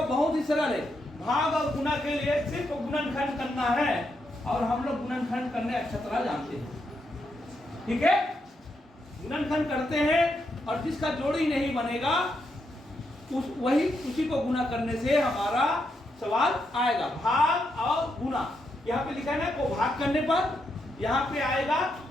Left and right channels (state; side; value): normal; both; correlation 0.81